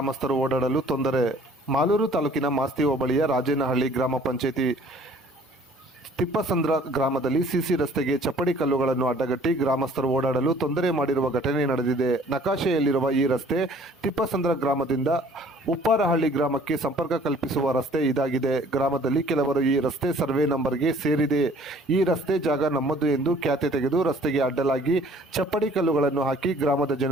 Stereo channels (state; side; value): normal; both; correlation 0.55